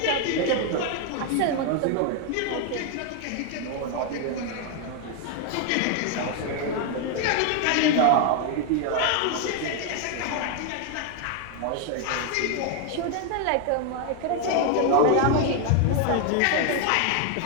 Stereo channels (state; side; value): different; both; correlation 0.00